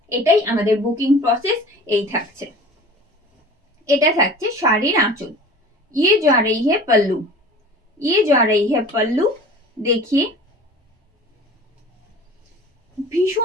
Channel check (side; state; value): both; normal; correlation 0.41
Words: এটাই আমাদের বুকিং প্রসেস। এই থাকছে, এটা থাকছে শাড়ির আঁচল। ये जा रही है पल्लू। ये जा रही है पल्लू। देखिए